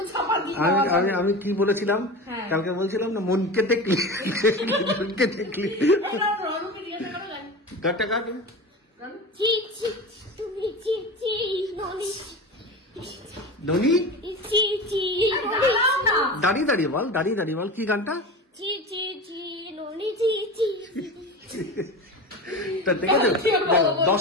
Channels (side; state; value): both; normal; correlation 0.29